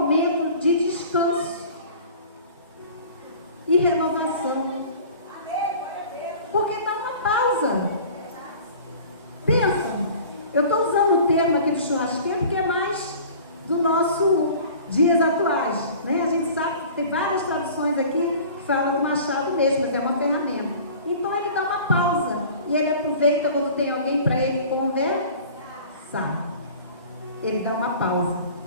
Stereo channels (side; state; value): both; inverted; correlation -0.44